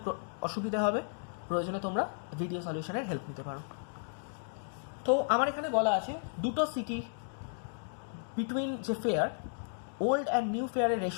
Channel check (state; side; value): silent; right; digital silence